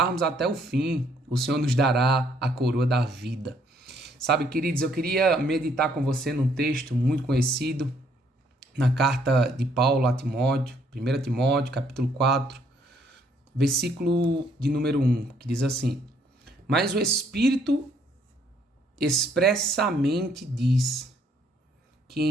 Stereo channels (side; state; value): both; normal; correlation 0.67